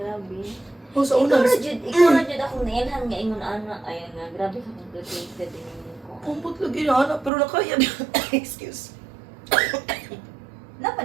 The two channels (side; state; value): left; drops out; at 7.3 s